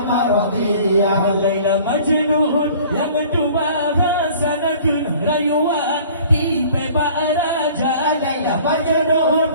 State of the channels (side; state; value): both; inverted; correlation -0.49